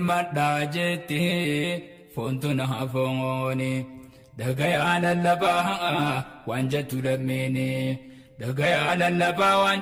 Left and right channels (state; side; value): identical; both; correlation 1.00